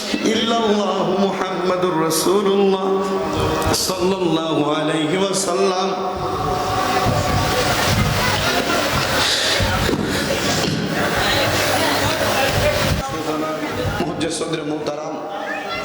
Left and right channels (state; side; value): identical; both; correlation 1.00